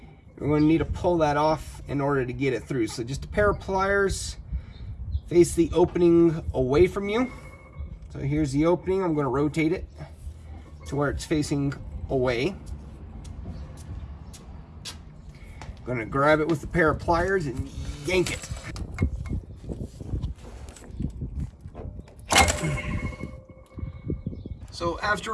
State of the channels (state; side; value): identical; both; correlation 1.00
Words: going to need to pull that off in order to get it through. So just a pair of pliers, face the opening away from you. So here's the opening. I'm going to rotate it to where it's facing away. I'm going to grab it with a pair of pliers and yank it. So after